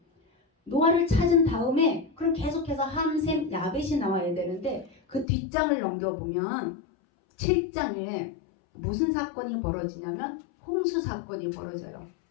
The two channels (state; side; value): drops out; right; at 5.2 s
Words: 노아를 찾은 다음에 그럼 계속해서 함, 셈, 야벳이 나와야 되는데 그 뒷장을 넘겨보면 7장에 무슨 사건이 벌어지냐면 홍수 사건이 벌어져요.